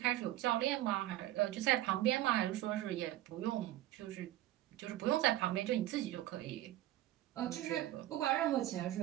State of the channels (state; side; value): quieter; left; 14.5 dB